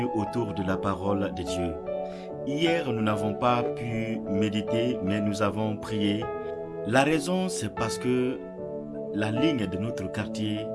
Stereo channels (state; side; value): identical; both; correlation 1.00